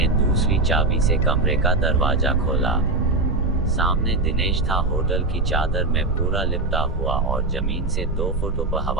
दूसरी चाबी से कमरे का दरवाजा खोला। सामने दिनेश था, होटल की चादर में पूरा लिपटा हुआ और जमीन से 2 फुट ऊपर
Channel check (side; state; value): left; quieter; 3.1 dB